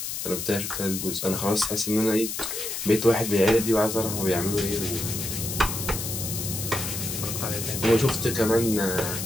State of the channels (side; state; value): left; noise; hiss, 4 dB below the sound